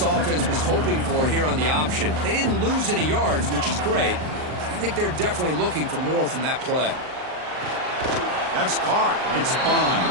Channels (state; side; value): late; left; 39 ms